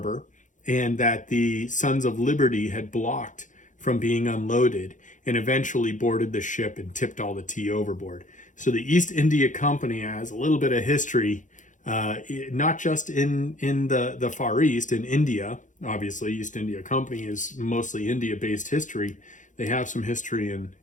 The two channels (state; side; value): late; right; 0.37 ms